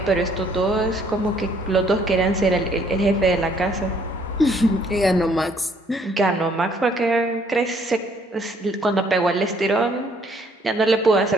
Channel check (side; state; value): both; normal; correlation 0.64